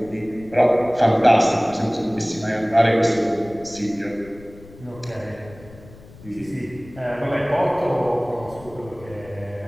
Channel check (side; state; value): left; noise; rumble, 20 dB below the sound